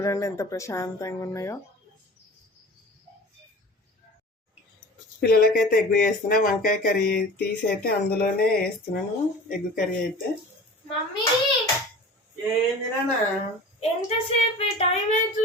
ఎంత ప్రశాంతంగా ఉన్నాయో. పిల్లలకైతే ఎగ్ వేస్తున్నా. వంకాయ కర్రీ తీసి అయితే అందులోనే వేస్తున్నాను ఎగ్ కర్రీ అయితే. ఏందినా ఎంతసేపు టైం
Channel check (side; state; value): both; normal; correlation 0.39